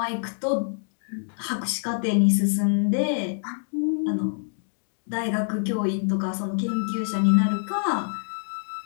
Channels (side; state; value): right; silent; digital silence